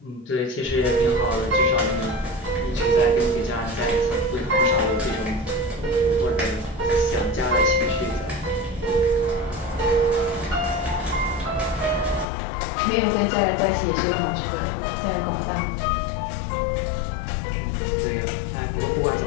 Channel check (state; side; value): drops out; right; at 12.2 s